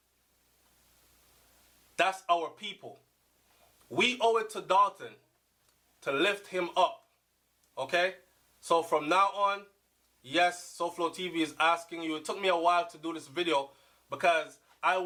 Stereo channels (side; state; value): both; identical; correlation 1.00